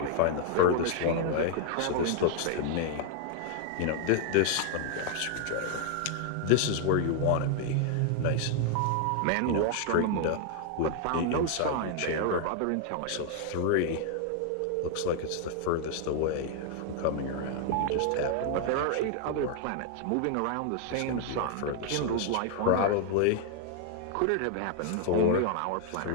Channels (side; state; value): both; different; correlation 0.00